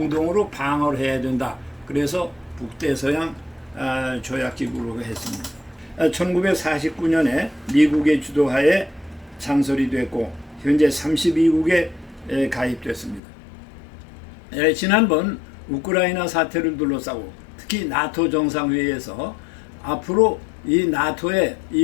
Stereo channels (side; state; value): right; drops out; at 13.2 s